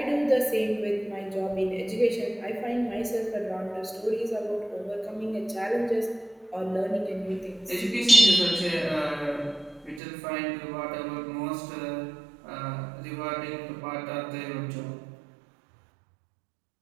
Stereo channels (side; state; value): left; drops out; at 10.0 s